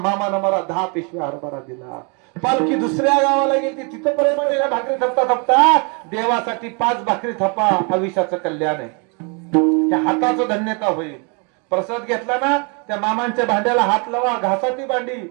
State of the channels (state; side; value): quieter; left; 34.9 dB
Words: मला 10 पिशवी हरभरा दिला. पालखी दुसऱ्या गावाला गेली, तिथं पर्यंत भाकरी थपता थपता देवासाठी 5 भाकरी थपा, आयुष्याचं कल्याण आहे, त्या हाताचं धन्यता होईल. प्रसाद घेतला ना, त्या मामांच्या भांड्याला हात लावा, घासा ती भांडी.